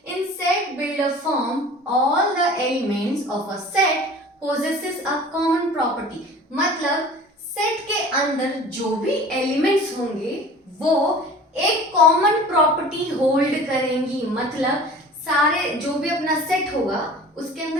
इन set builder form all the elements of a set possesses a common property। मतलब सेट के अंदर जो भी एलिमेंट्स होंगे वो एक कॉमन प्रॉपर्टी होल्ड करेंगी। मतलब सारे जो भी अपना सेट होगा उसके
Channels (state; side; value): normal; both; correlation 0.43